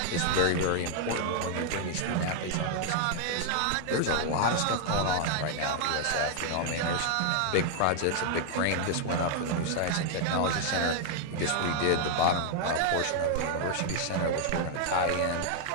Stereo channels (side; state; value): both; different; correlation 0.00